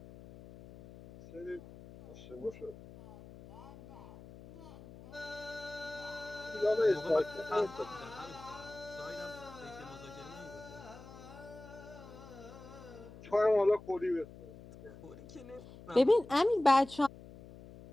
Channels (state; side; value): noise; left; hum, 17 dB below the sound